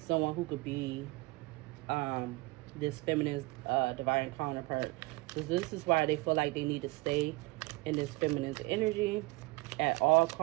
who could be this feminine divine counterpart. So this is why they feel like they need to stay in this feminine energy at all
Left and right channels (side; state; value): left; quieter; 23.0 dB